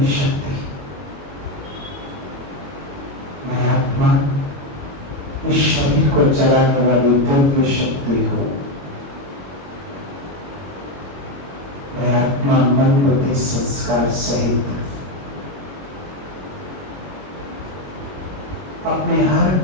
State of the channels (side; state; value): left; late; 22 ms